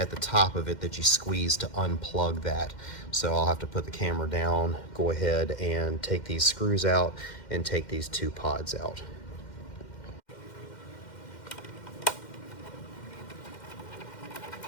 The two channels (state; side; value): late; right; 2.1 ms